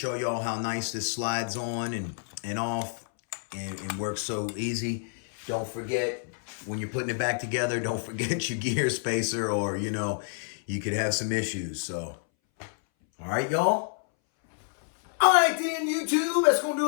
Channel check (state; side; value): silent; right; 59 dB below the other